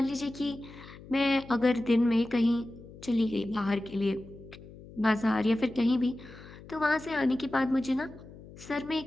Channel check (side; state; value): left; noise; hum, 18 dB below the sound